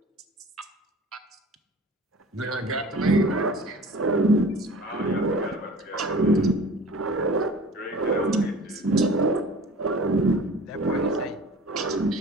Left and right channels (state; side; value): normal; both; correlation 0.42